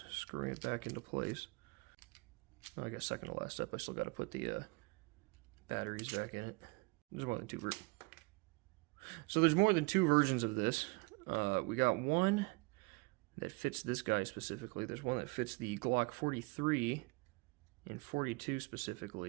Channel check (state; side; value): quieter; left; 28.0 dB